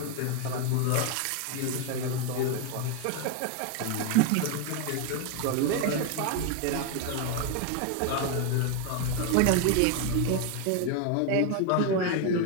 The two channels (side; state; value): both; different; correlation 0.01